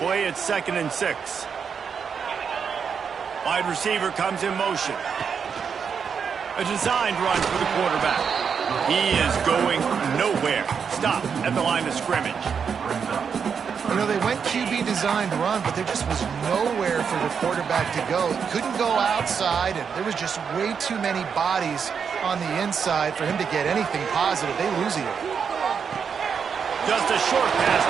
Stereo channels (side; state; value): left; quieter; 6.6 dB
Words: it's 2nd and 6. Wide receiver comes in motion. A designed run for the quarterback. He is going nowhere. Stop at the line of scrimmage. You know, they went QB designed run, but there just was nowhere for the quarterback to go. He couldn't go outside, and there was just way too many bodies on the inside for him to get anything positive. They lose it. Just a short pass